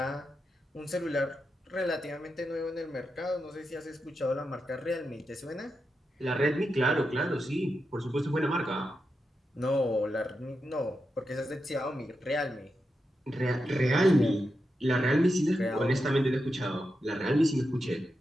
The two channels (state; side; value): normal; both; correlation 0.87